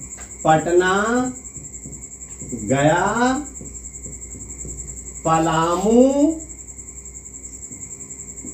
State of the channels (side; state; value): both; identical; correlation 1.00